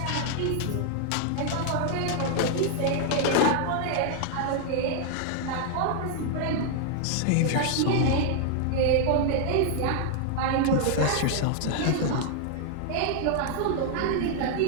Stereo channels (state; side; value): different; both; correlation 0.00